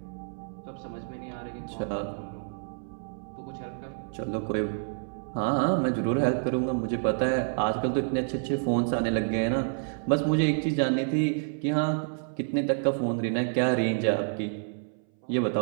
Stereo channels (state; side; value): silent; left; 59 dB below the other